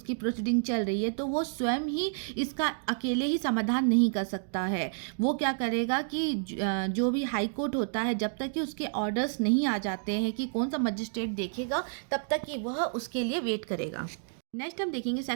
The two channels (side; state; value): left; silent; digital silence